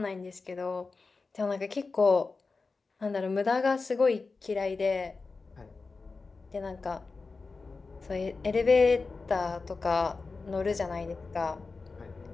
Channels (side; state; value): right; quieter; 4.1 dB